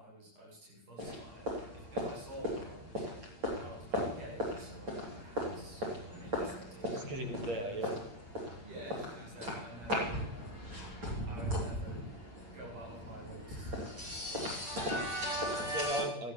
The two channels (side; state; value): left; late; 8.6 ms